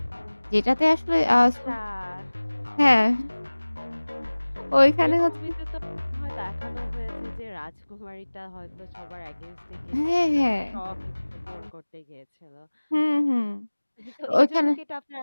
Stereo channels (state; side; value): inverted; both; correlation -1.00